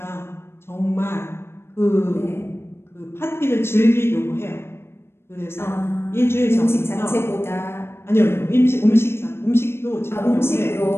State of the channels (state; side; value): late; right; 0.12 ms